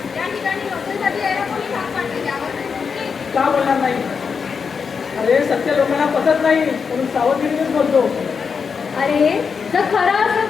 या ठिकाणी नोकरीसाठी यायला कोणी भाग पाडले त्यावर का बोलणार नाही अरे सत्य लोकांना पटत नाही म्हणून सावधगिरीनेच बोलतो अरे जर खरं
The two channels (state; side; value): quieter; right; 5.8 dB